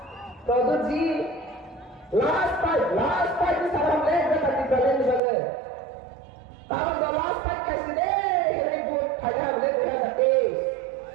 produksi last part ni salam le great party Brahman di bagai kalau last part kasih deh ribut kaya boleh we have the day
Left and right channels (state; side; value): drops out; left; at 5.2 s